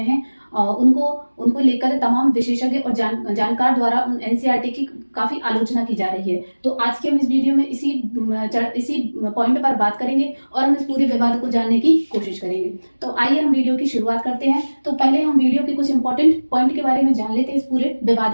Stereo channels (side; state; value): both; inverted; correlation -1.00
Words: उनको उनको लेकर तमाम विशेषज्ञ और जानकार द्वारा उन एनसीईआरटी की काफ़ी आलोचना की जा रही है। तो आज के हम इस वीडियो में इसी पॉइंट पर बात करेंगे और हम इस पूरे विवाद को जानने की कोशिश करेंगे। तो आइए हम वीडियो की शुरुआत करते हैं। तो पहले हम वीडियो के कुछ इंपॉर्टेंट पॉइंट के बारे में जान लेते हैं इस पूरे